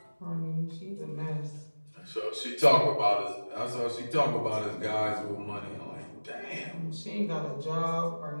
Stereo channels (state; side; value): inverted; both; correlation -1.00